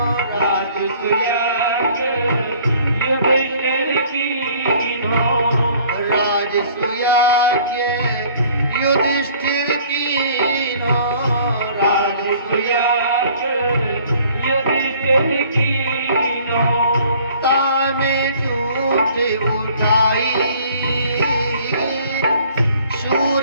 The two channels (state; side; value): inverted; both; correlation -0.55